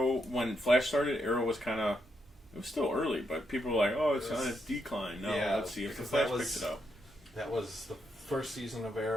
when Flash started, Arrow was kind of. It was still early, but people were like, "Oh, it's on its decline." No, let's see if the Flash picks it up. That was the first season of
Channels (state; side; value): normal; both; correlation 0.80